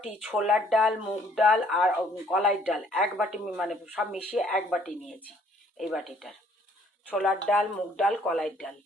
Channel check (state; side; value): normal; both; correlation 0.62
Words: ছোলার ডাল, মুগ ডাল আর কলাইয়ের ডাল এক বাটি, মানে সব মিশিয়ে এক বাটি নিয়েছি। এই বাটিটার ছোলার ডাল, মুগ ডাল, কলাইয়ের ডাল।